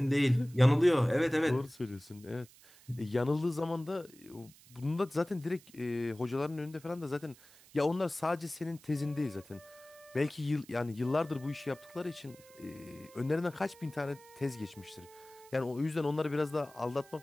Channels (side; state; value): right; noise; hiss, 24 dB below the sound